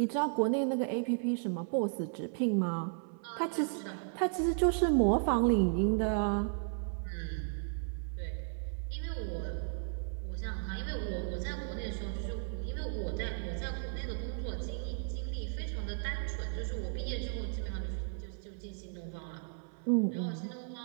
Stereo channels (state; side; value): silent; left; 55 dB below the other